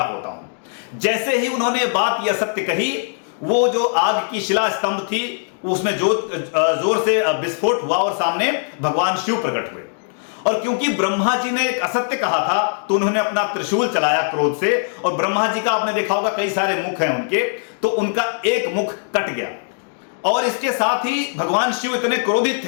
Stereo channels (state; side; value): silent; right; digital silence